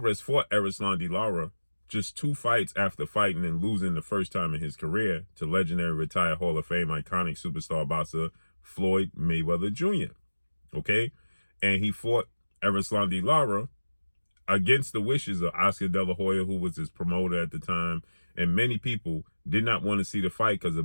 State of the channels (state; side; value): inverted; both; correlation -1.00